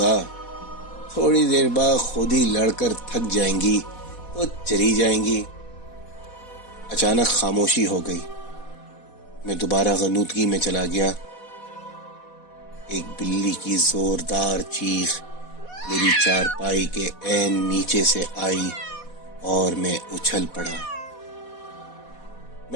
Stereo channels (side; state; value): right; late; 4.1 ms